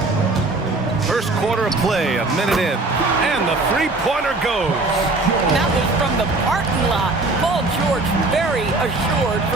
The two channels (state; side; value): quieter; left; 3.2 dB